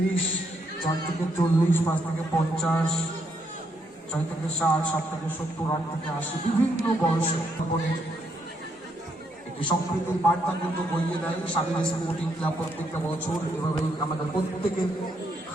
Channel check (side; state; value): both; normal; correlation 0.75